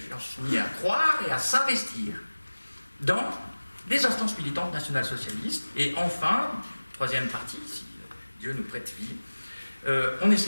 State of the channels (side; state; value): both; inverted; correlation -1.00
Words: croire et à s'investir dans des instances militantes nationales-socialistes. Et enfin, troisième partie, si Dieu nous prête vie, on